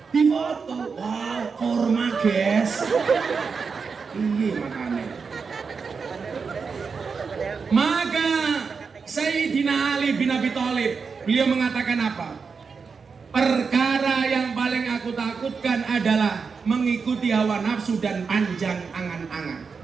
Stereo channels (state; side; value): quieter; left; 5.3 dB